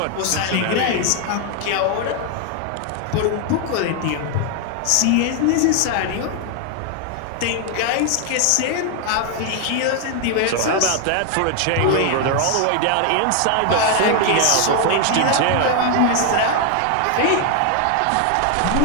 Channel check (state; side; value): different; both; correlation 0.00